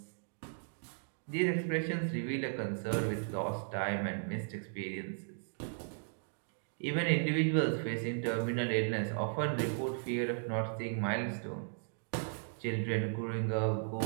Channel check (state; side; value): silent; left; digital silence